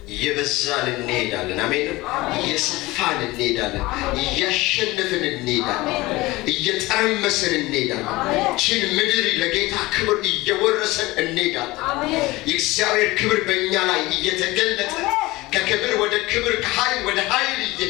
እየበዛን እንሄዳለን። አሜን። እየሰፋን እንሄዳለን። እያሸነፍን እንሄዳለን። እየጠረመስን እንሄዳለን። ችን ምድር ለጌታ ክብር እየወረሰን እንሄዳለን። የእግዚአብሔር ክብር በእኛ ላይ እየተገለጠ ከክብር ወደ ክብር ከኃይል ወደ ኃይል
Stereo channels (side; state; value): right; quieter; 20.4 dB